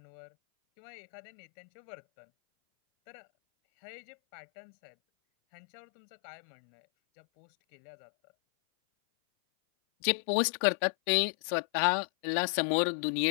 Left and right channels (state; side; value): silent; right; 55 dB below the other